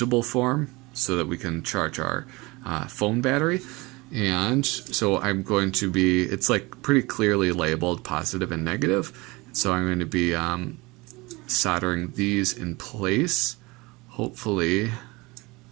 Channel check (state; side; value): quieter; left; 23.7 dB